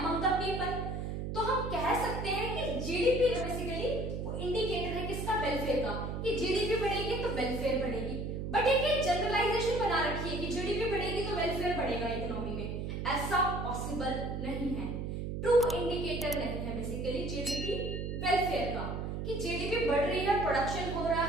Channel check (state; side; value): noise; right; hum, 4 dB below the sound